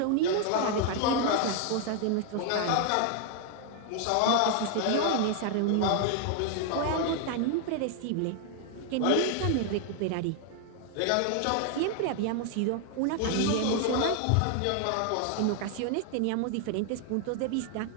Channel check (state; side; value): different; both; correlation 0.00